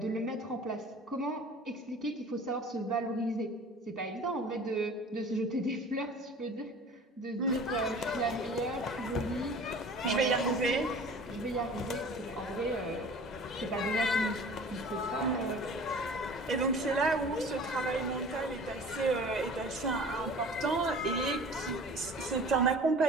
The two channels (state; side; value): normal; both; correlation 0.43